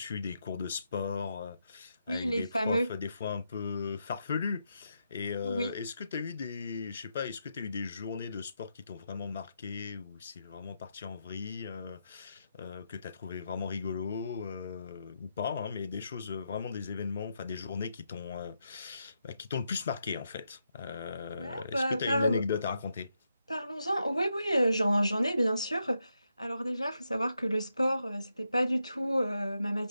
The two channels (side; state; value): both; inverted; correlation -0.83